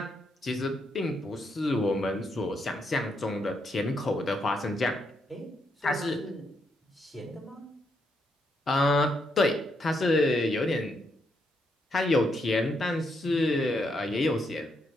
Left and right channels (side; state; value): both; normal; correlation 0.78